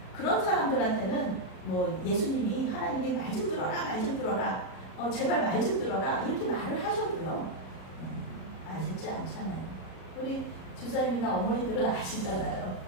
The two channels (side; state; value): right; late; 37 ms